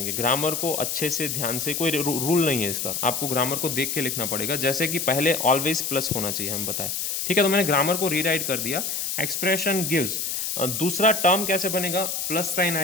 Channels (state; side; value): noise; left; hiss, 2 dB below the sound